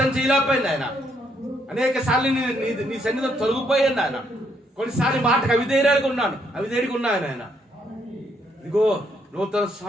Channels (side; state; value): both; normal; correlation 0.73